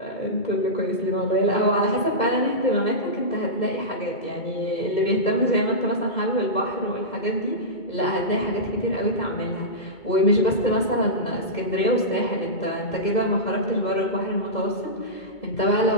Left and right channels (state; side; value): late; right; 2.2 ms